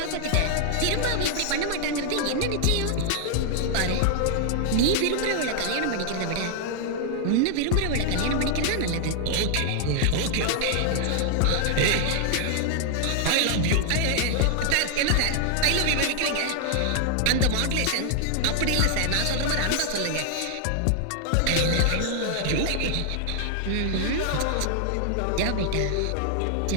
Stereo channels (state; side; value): different; both; correlation 0.00